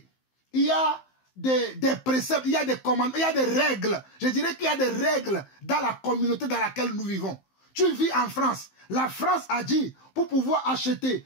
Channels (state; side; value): late; right; 15 ms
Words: Il y a des préceptes, il y a des commandements, il y a des règles. Je dirais qu'il y a des règles dans la communauté dans laquelle nous vivons. Tu vis en France. La France a dit, pour pouvoir acheter,